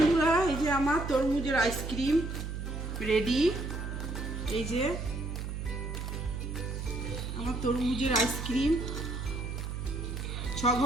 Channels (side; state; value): right; noise; hum, 5 dB below the sound